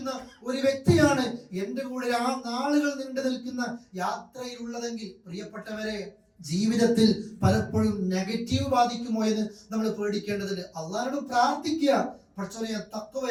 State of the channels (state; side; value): identical; both; correlation 1.00